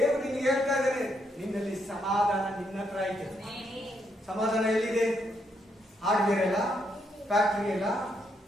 ನಿನ್ಗೆ ಹೇಳ್ತಾ ಇದ್ದಾನೆ, ನಿನ್ನಲ್ಲಿ ಸಮಾಧಾನ ನಿನ್ನ ಹತ್ರ ಇದೆ. ಸಮಾಧಾನ ಎಲ್ಲಿದೆ? ಹಾರ್ಡ್ವೇರ್ ಅಲ್ಲ, ಫ್ಯಾಕ್ಟರಿ ಅಲ್ಲ,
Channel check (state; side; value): normal; both; correlation 0.77